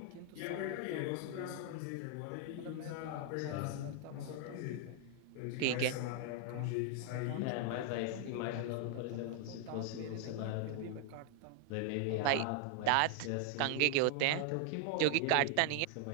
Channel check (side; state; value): both; different; correlation 0.00